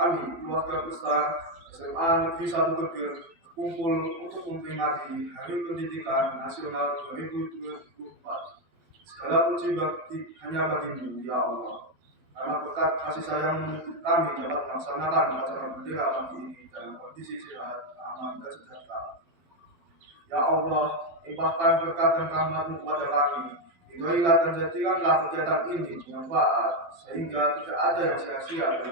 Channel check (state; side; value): late; left; 12 ms